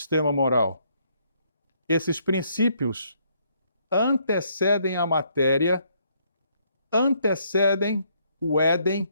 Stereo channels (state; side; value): inverted; both; correlation -0.70